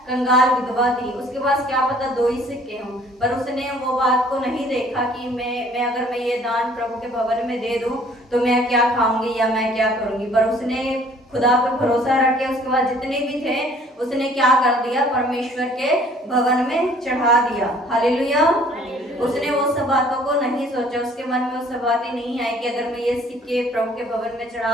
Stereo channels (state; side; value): normal; both; correlation 0.56